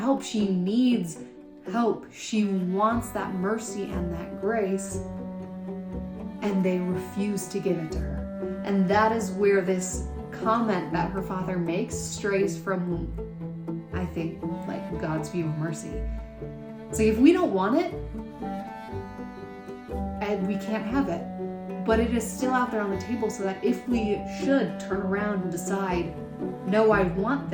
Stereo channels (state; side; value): identical; both; correlation 1.00